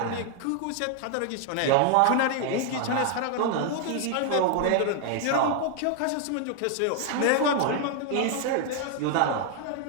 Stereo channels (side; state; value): both; different; correlation 0.00